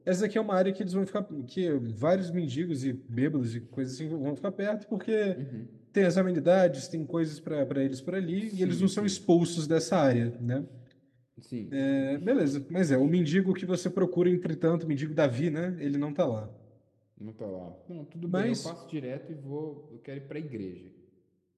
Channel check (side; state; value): both; identical; correlation 1.00